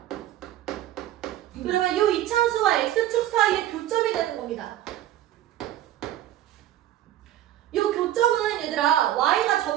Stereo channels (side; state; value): left; quieter; 13.0 dB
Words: 그러면 이 2차 함수와 x축 사이의 교점이 되는 겁니다. 이 교점은 얘들아 y가